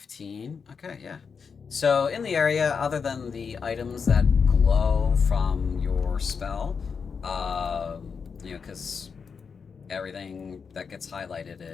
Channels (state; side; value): quieter; right; 5.8 dB